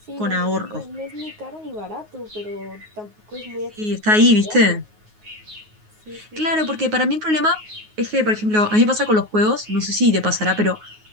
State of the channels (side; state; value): left; late; 9.5 ms